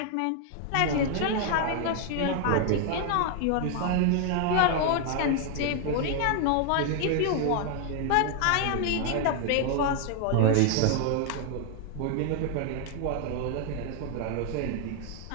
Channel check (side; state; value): both; different; correlation 0.00